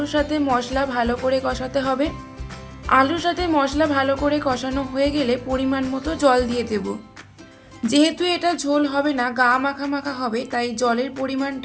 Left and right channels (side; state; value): both; identical; correlation 1.00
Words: সাথে মশলা ভালো করে কষাতে হবে। আলুর সাথে মশলা ভালো করে কষানো হয়ে গেলে পরিমাণ মতো জল দিয়ে দেব। যেহেতু এটা ঝোল হবে না, গা মাখা মাখা হবে, তাই জলের